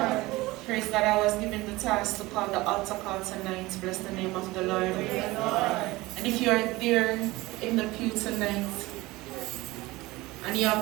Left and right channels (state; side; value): quieter; left; 20.3 dB